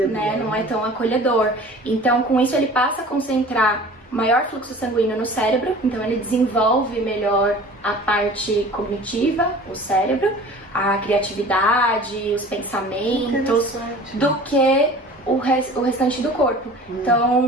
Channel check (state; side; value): normal; both; correlation 0.43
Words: Né? Não é tão acolhedor. Então, com isso, ele passa a concentrar maior fluxo sanguíneo no cérebro, então ele desenvolve melhor a parte cognitiva, o cérebro, a criatividade, os pensamentos, do que o restante do corpo.